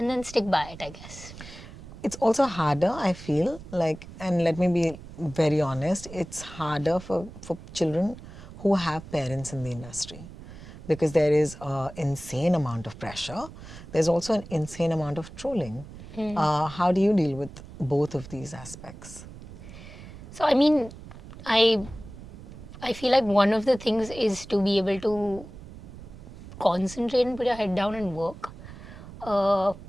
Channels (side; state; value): right; noise; rumble, 15 dB below the sound